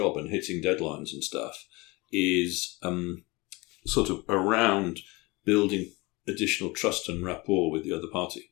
and hitting deadlines and stuff, is sort of around building additional trust and rapport with the other party.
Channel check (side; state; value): right; quieter; 24.2 dB